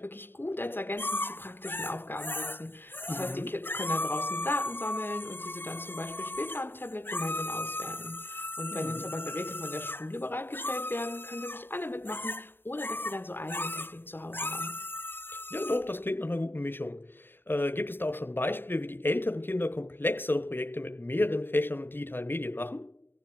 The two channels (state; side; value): late; right; 0.10 ms